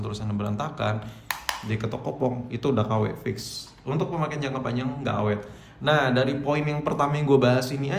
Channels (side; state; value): both; identical; correlation 1.00